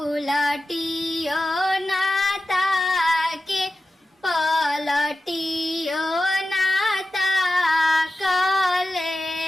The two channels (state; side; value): normal; both; correlation 0.93